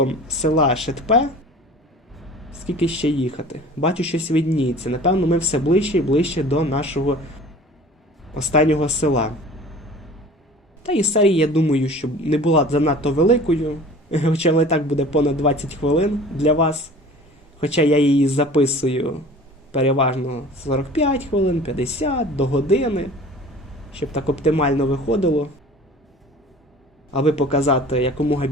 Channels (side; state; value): both; normal; correlation 0.44